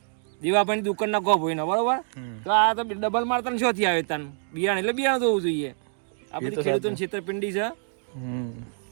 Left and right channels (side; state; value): left; silent; 61 dB below the other